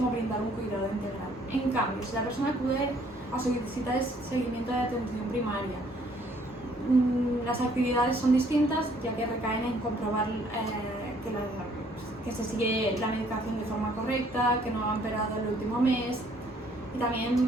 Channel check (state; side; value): normal; both; correlation 0.62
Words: brindar un cuidado integral. En cambio, si la persona acude a su visita de seguimiento de atención primaria, las actividades son distintas, ya que recaen en comprobar que se sigue la medicación de forma correcta, que no ha empeorado el último mes, y